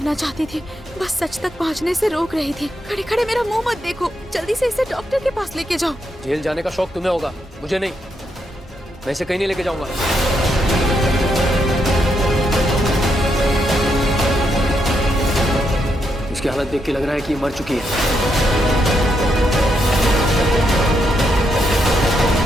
चाहती थी, बस सच तक पहुंचने से रोक रही थी। खड़े खड़े मेरा मुंह मत देखो, जल्दी से इसे डॉक्टर के पास लेके जाओ। जेल जाने का शौक तुम्हें होगा, मुझे नहीं। मैं इसे कहीं नहीं लेके जाऊंगा। इसकी हालत देख के लग रहा है कि ये मर चुकी है।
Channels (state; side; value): normal; both; correlation 0.80